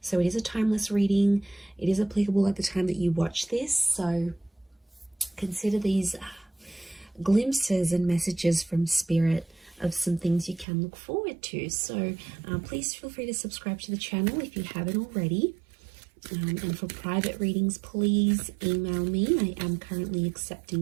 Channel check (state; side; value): drops out; left; at 10.7 s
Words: So it is a timeless reading. It is applicable at the time that you watch this. So consider these glimpses and messages from spirit of some things you can look forward to. So please feel free to subscribe to the channel if you haven't already. And for private readings, please email me. I am currently